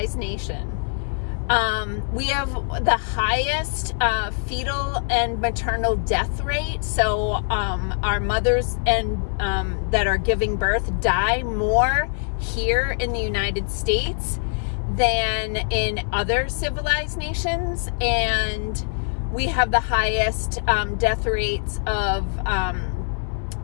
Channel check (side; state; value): right; silent; 63 dB below the other